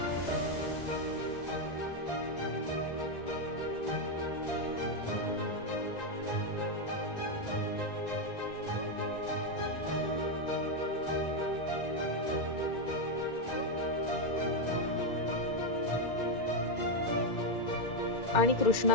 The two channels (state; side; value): late; right; 1.9 ms